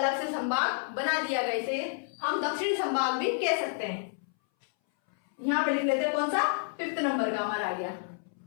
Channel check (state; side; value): silent; right; 58 dB below the other